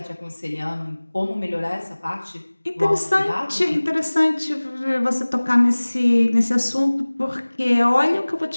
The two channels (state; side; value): inverted; both; correlation -1.00